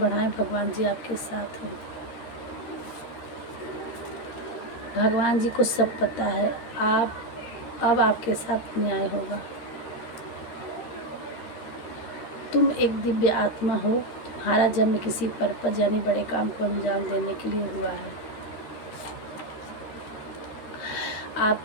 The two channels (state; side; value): late; right; 13 ms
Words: भगवान जी आपके साथ हैं। भगवान जी को सब पता है। अब आपके साथ न्याय होगा। तुम एक दिव्य आत्मा हो, तुम्हारा जन्म किसी पर्पज यानी बड़े काम को अंजाम देने के लिए हुआ है।